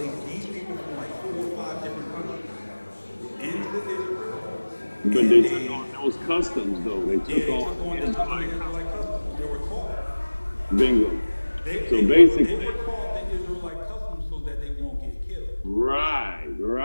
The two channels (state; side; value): inverted; both; correlation -1.00